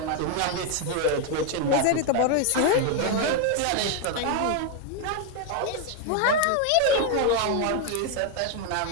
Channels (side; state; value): both; different; correlation 0.01